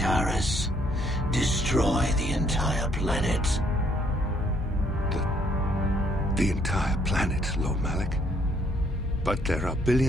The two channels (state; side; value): normal; both; correlation 0.67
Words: Destroy the entire planet. The entire planet, Lord Malik? But there are